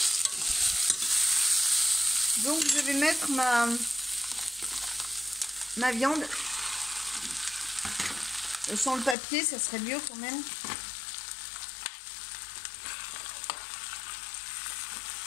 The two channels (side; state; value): right; drops out; at 9.2 s